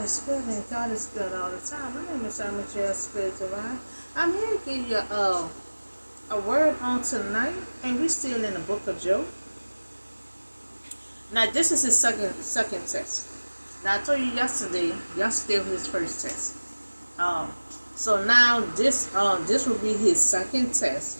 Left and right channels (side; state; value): both; inverted; correlation -1.00